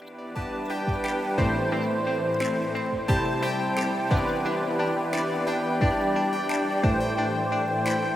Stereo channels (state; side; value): normal; both; correlation 0.89